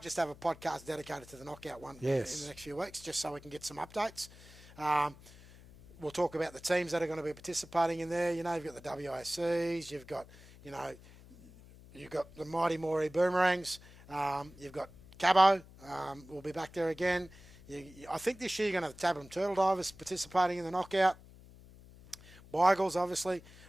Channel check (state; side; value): noise; left; hum, 21 dB below the sound